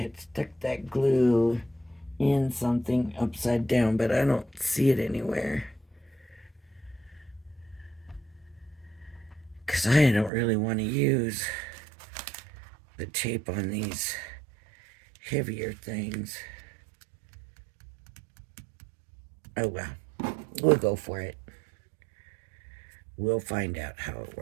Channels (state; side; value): drops out; left; at 10.3 s